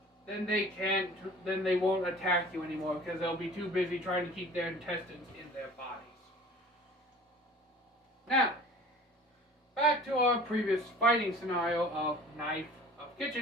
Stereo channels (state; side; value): normal; both; correlation 0.46